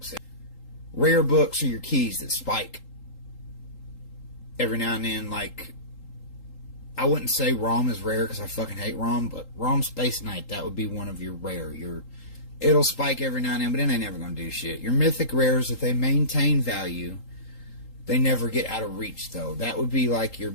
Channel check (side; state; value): right; late; 3.8 ms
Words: Rare books are your keys that spike every now and then. Like, I wouldn't say ROM is rare because I fucking hate ROM, but ROM Space Knight, that would be one of your rare. It'll spike every now and then, but it ain't never going to do shit. Your mythic rares, if they maintain value, they never get out of reach, though. That would be like your